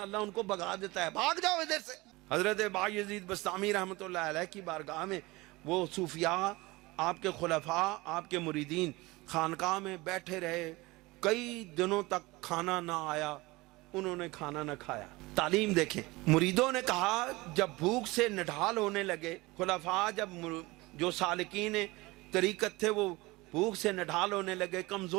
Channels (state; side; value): quieter; left; 22.0 dB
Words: اللہ ان کو بھگا دیتا ہے, بھاگ جاؤ ادھر سے. حضرت بایزید بستامی رحمۃ اللہ علیہ کی بارگاہ میں وہ صوفیاء, آپ کے خلفاء, آپ کے مریدین خانقاہ میں بیٹھے رہے, کئی دنوں تک کھانا نہ آیا, انہوں نے کھانا نہ کھایا. تعلیم دیکھیں. مریدوں نے کہا جب بھوک سے نڈھال ہونے لگے, خلفاء جب جو سالکین طریقت تھے وہ بھوک سے نڈھال ہونے لگے,